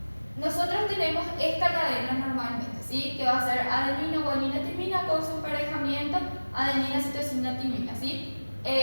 Nosotros tenemos esta cadena normalmente, ¿sí? Que va a ser adenina, guanina, timina con su emparejamiento adenina, citosina, timina, ¿sí?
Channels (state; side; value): inverted; both; correlation -1.00